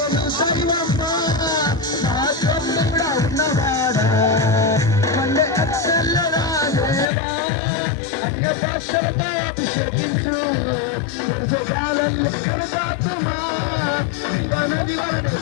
దైవమ్మ నా తోడుగా ఉన్నవాడా మండే అక్షల్లరా దేవా అన్య భాషలతో అభిషేకించు కాలంలో కృపాత్మా జీవనది వలన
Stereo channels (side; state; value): right; drops out; at 7.1 s